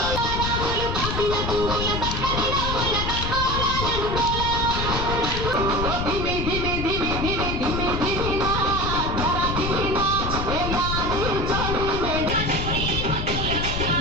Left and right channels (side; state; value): left; noise; rumble, 3 dB below the sound